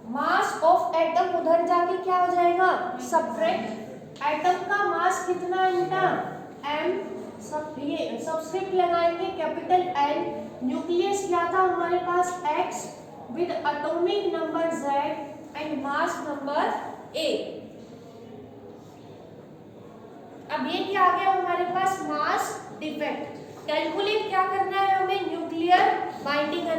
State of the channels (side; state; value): both; identical; correlation 1.00